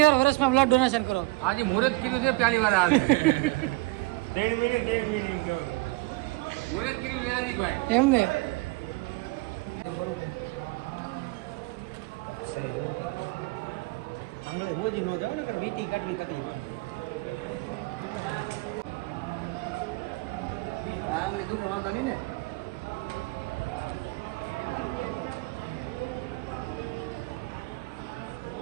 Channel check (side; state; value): left; quieter; 22.7 dB